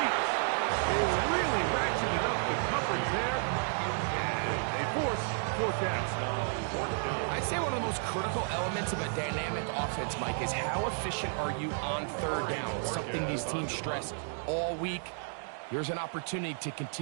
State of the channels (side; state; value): left; silent; 56 dB below the other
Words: They really ratcheted up the coverage there. And they force 4th down. I'd say one of the most critical elements of a dynamic offense, Mike, is how efficient are you on 3rd down? It's something these teams stress all week. Here's an opportunity to